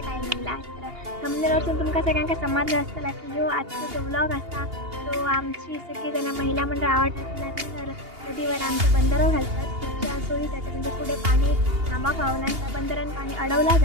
टायमिंगला. तर थंबनेलवरून तुमका सगळ्यांका समजलं असतं की ह्यो आजचा जो व्लॉग असा तो आमची सगळीजण महिला मंडळ आवडतात. तर नदीवर आमचं बंदरं घालतात पुढच्या सोयीसाठी, म्हणजे पुढे पाणी थांबा व्हावं त्या बंदरानं पाणी अडवला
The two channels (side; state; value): left; late; 2.8 ms